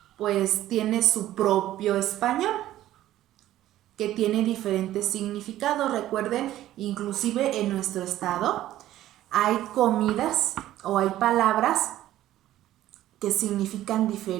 pues tiene su propio español, que tiene diferentes significados. Recuerden, inclusive en nuestro estado hay comidas o hay palabras que significan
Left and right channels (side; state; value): left; quieter; 13.7 dB